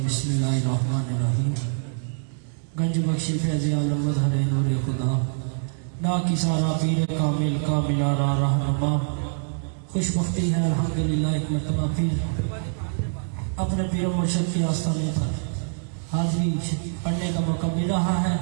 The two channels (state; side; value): silent; left; digital silence